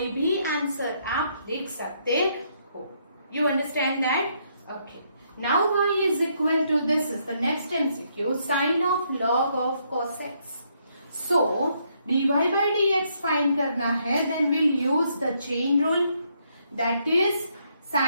भी आंसर आप लिख सकते हो. You understand that? Okay. Now y is equal to, this is the next MCQ, sine of log of cos x. So dy by dx find करना है, then we'll use the chain rule. That is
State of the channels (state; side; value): inverted; both; correlation -0.74